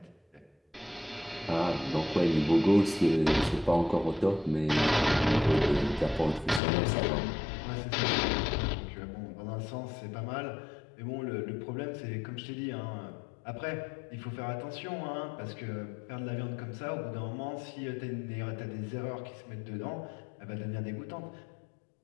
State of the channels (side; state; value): right; drops out; at 6.6 s